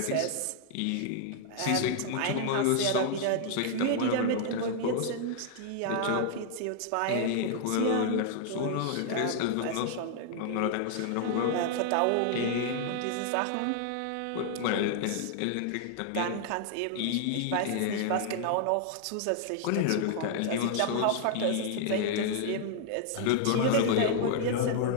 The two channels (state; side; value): different; both; correlation 0.00